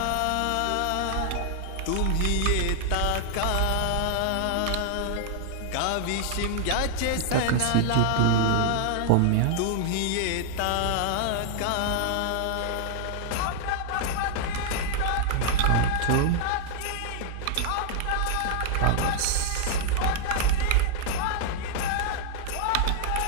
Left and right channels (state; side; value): different; both; correlation -0.01